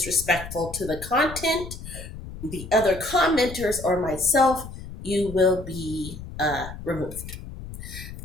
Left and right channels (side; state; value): left; noise; rumble, 12 dB below the sound